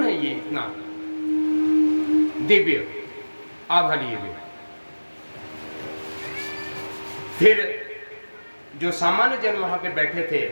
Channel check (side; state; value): both; inverted; correlation -1.00